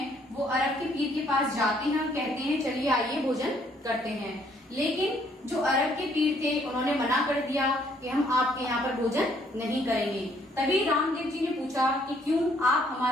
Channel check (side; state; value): both; normal; correlation 0.65